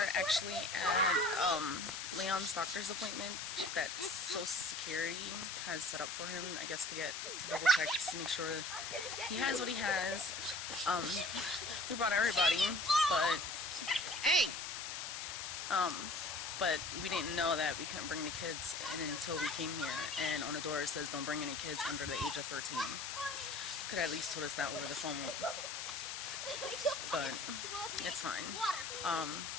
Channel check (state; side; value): noise; left; hiss, 5 dB below the sound